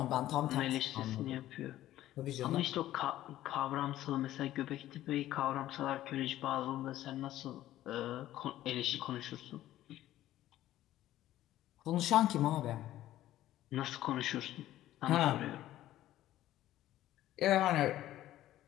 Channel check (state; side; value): quieter; right; 13.9 dB